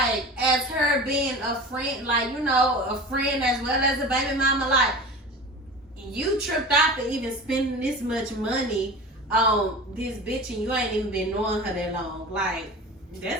as her being a friend, like you know, a friend as well as a baby mama, like you tripped out for even spending this much money on this bitch and you ain't even been knowing her that long. Like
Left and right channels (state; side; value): normal; both; correlation 0.35